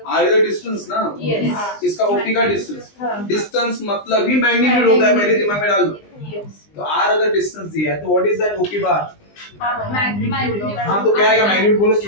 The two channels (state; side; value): late; right; 20 ms